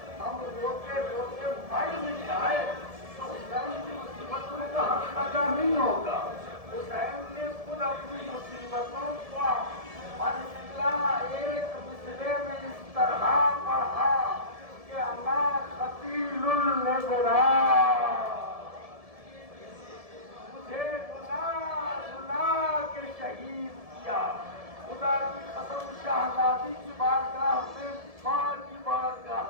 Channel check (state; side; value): late; left; 1.7 ms